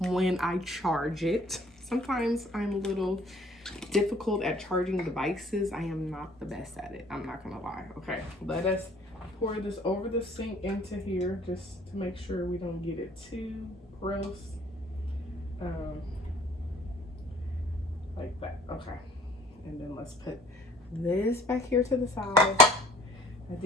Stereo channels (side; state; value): both; normal; correlation 0.55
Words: when I charge it. Sometimes I'm a little difficult at charging devices. I am not the best at it, I'm not gonna lie. Okay, let us pour this over the sink into here just to make sure we don't get it too gross. Like that. Okay, and then let's put this back here to the side. I